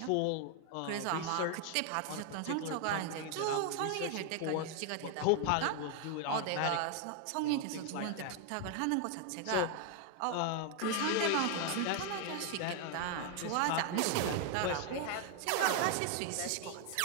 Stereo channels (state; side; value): different; both; correlation 0.01